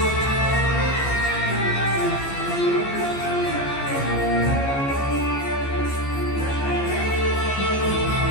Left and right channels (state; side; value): late; right; 15 ms